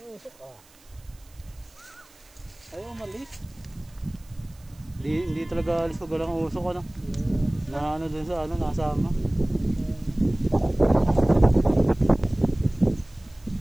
usok ah. Ayaw umalis. Hindi talaga alis pag walang usok ano. Na ano dun sa ano, nasama.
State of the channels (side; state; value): right; noise; hiss, 28 dB below the sound